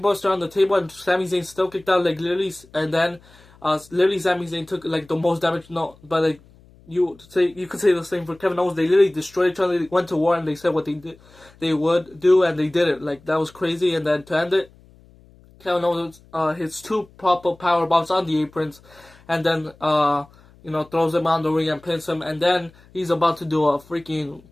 on the table, and Sami Zayn still kicked out, like, literally, and then, literally Sami Zayn took, like, the most damage, but, like, you could say the same for Kevin Owens. They literally destroyed each other, they went to war, and they said what they would do, and they did it, like, that was crazy. And then to end it, Kevin Owens, hits 2 pop-up power bombs on the aprons, and then, throws him on the ring and pins him, and then he's about to do a freaking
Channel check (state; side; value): noise; left; hum, 27 dB below the sound